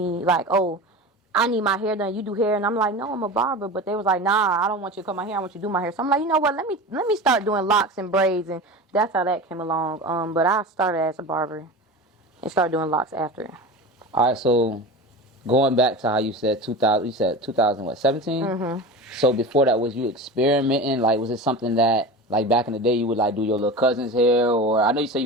like, oh, I need my hair done, you do hair, and I'm like, no, I'm a barber, but they was like, nah, I don't want you to cut my hair, I want you to do my hair. So I'm like, you know what, let me start doing locks and braids, and that's how that came along. But I started as a barber and started doing locks after. All right, so going back to how you said 2000, you said 2017? Mm-hmm. So before that, was you experimenting? Like, was it something that, like, back in the day, you would, like, do your little cousin's hair? Or I know you said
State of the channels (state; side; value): normal; both; correlation 0.30